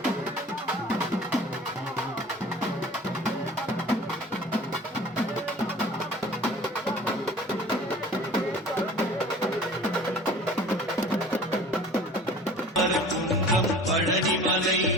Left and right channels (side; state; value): both; normal; correlation 0.44